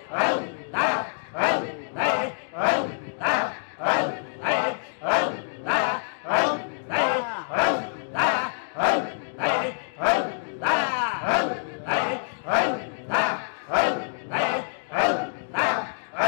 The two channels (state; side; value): silent; right; digital silence